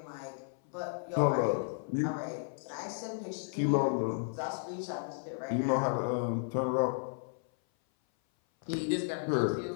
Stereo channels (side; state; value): right; silent; 55 dB below the other